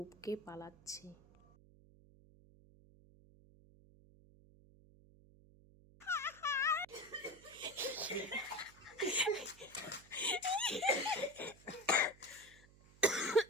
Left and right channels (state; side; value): noise; right; hum, 24 dB below the sound